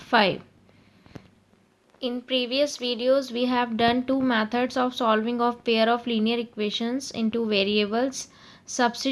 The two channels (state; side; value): identical; both; correlation 1.00